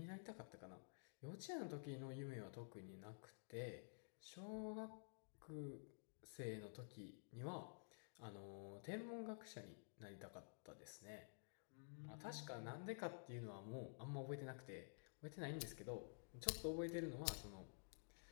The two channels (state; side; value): silent; right; digital silence